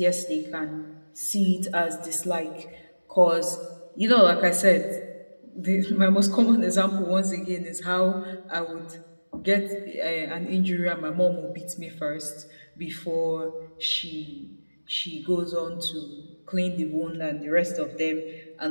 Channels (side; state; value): both; inverted; correlation -1.00